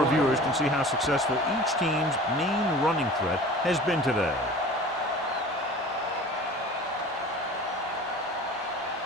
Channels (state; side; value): normal; both; correlation 0.41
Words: viewers can see how successful each team's main running threat has been today.